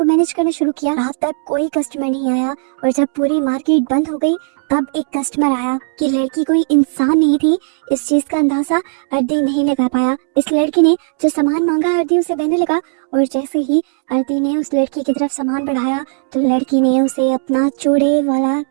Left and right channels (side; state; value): left; silent; digital silence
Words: मैनेज करना शुरू किया। रात तक कोई कस्टमर नहीं आया और जब पूरी मार्केट बंद हो गई तब एक कस्टमर आया कि लड़की कोई इंसान नहीं थी। इस चीज का अंदाजा अर्दी नहीं लगा पाया। इस लड़की ने जो सामान मांगा अर्दी उसे देने लगा और जैसे ही अर्दी ने उस लड़की की तरफ सामान बढ़ाया तो लड़की ने उसे अपना चूड़े वाला